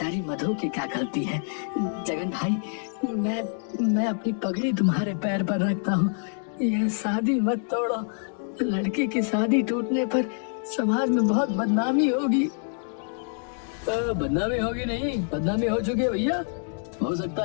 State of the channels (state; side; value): silent; right; 61 dB below the other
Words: मधु की क्या गलती है? जगन भाई, मैं अपनी पगड़ी तुम्हारे पैर पर रखता हूँ, ये शादी मत तोड़ो। लड़की की शादी टूटने पर समाज में बहुत बदनामी होगी। बदनामी होगी नहीं, बदनामी हो चुकी है भैया। हो सकता